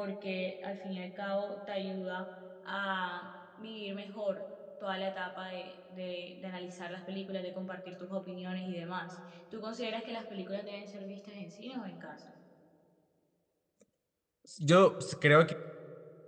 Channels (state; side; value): identical; both; correlation 1.00